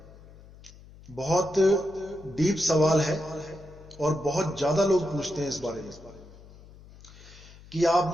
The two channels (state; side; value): noise; left; hum, 21 dB below the sound